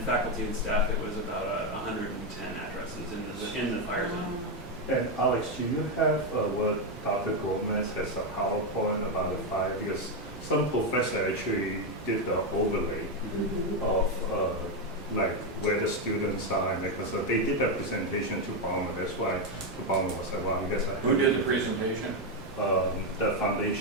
faculty and staff, it was about 110 addresses in the fire zone. And Alex, do you have what Dr. Gomez has a PowerPoint about the fire? Because some professor actually did the overlay of like where the students are, and because they did that presentation to Ballmer. That's why Ballmer was like, wow, you guys are. Who did the presentation? The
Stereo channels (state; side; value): normal; both; correlation 0.05